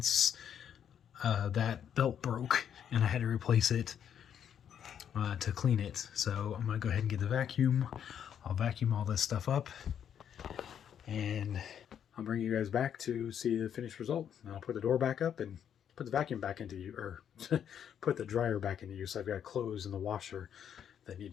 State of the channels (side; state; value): right; quieter; 8.9 dB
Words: that belt broke and I had to replace it to clean it. So I'm gonna go ahead and get the vacuum. I'll vacuum all this stuff up, and I'll bring you guys back to see the finished result. And I'll put the door back up and put the vacuum back into use, or put the dryer back into use. I've got clothes in the washer that need